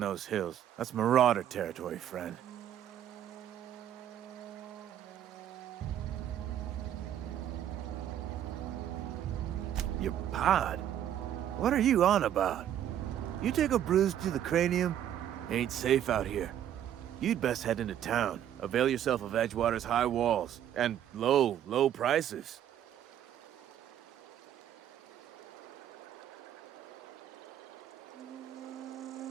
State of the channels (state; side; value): quieter; left; 10.7 dB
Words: hills. That's marauder territory, friend. Your pod? What are you on about? You take a bruise to the cranium? Ain't safe out here. You'd best head into town. Avail yourself of Edgewater's high walls. And low prices.